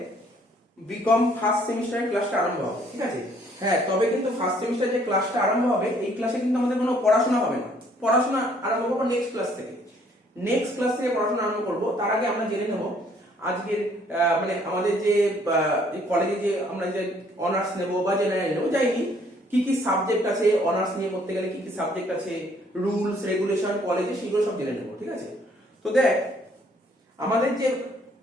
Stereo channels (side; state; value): both; normal; correlation 0.63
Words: বিকম ফার্স্ট সেমিস্টারের ক্লাসটা আরম্ভ হবে, ঠিক আছে? হ্যাঁ, তবে কিন্তু ফার্স্ট সেমিস্টার যে ক্লাসটা আরম্ভ হবে এই ক্লাসে কিন্তু আমাদের কোনো পড়াশোনা হবে না। পড়াশোনা আরম্ভ করবো নেক্সট ক্লাস থেকে। নেক্সট ক্লাস থেকে পড়াশোনা আরম্ভ করব। তার আগে আমরা জেনে নেব আজকের মানে আমাদের যে কলেজে যে আমরা যে অনার্স নেব বা জেনারেল নেব যাইনি, কি কি সাবজেক্ট আছে, অনার্স নিয়ে পড়তে গেলে কি কি সাবজেক্ট আছে, রুলস রেগুলেশন কলেজে, সেগুলো সব জেনে নেব, ঠিক আছে? তো দেখ আমাদের যে